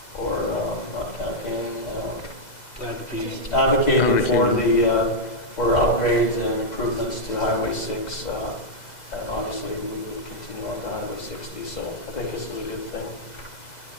not campaigning, advocating for upgrades and improvements to Highway 6. And obviously we will continue on to Highway 60. So I think it's a really good thing.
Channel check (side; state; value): right; late; 2.0 ms